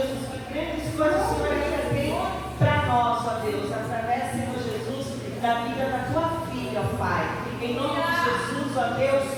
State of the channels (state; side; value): identical; both; correlation 1.00